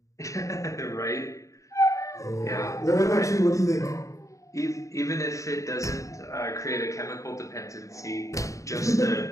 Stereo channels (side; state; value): right; late; 0.16 ms